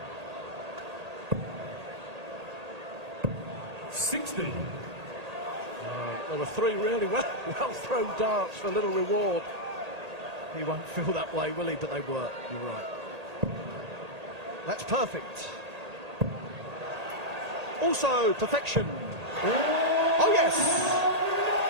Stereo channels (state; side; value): late; left; 1.8 ms